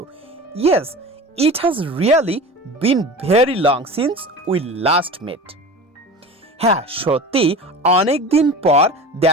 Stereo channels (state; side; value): normal; both; correlation 0.34